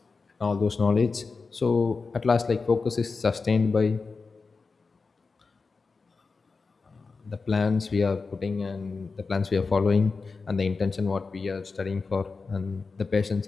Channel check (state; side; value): quieter; right; 4.4 dB